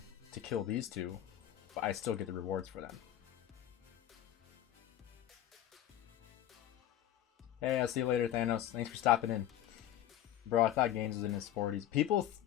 to kill these two, but I still get the rewards for them. Hey, I'll see you later, Thanos. Thanks for stopping in. Bro, I thought Gainz was in his 40s.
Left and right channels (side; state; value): right; quieter; 11.9 dB